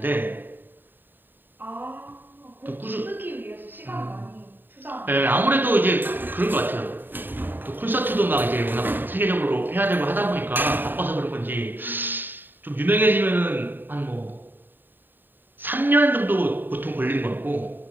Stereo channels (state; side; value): late; left; 0.093 ms